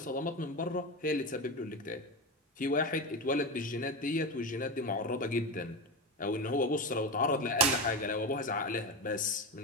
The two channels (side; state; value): both; normal; correlation 0.19